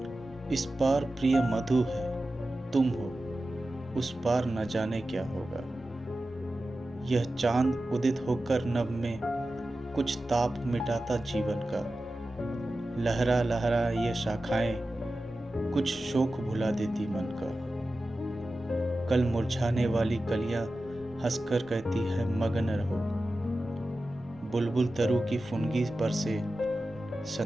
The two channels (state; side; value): normal; both; correlation 0.94